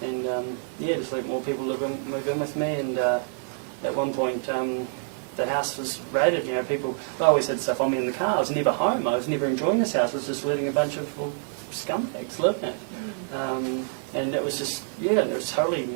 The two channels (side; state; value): left; silent; 60 dB below the other